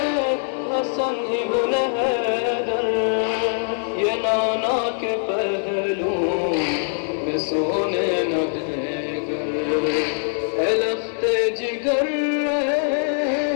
حسن ابن حیدر یہ نانا کے پہلو میں سونے نہ دے گر ہے لخت جگر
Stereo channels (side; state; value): right; silent; digital silence